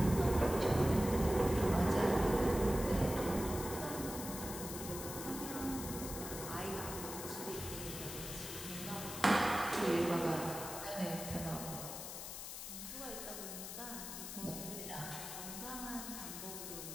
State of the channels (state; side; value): noise; left; hiss, 8 dB below the sound